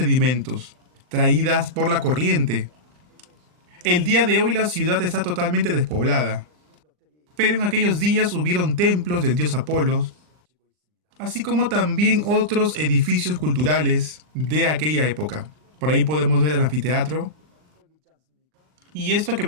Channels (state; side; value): late; left; 39 ms